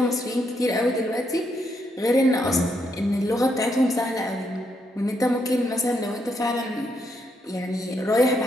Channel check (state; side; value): normal; both; correlation 0.77